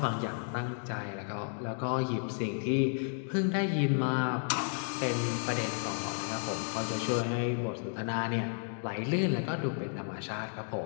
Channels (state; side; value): silent; right; 56 dB below the other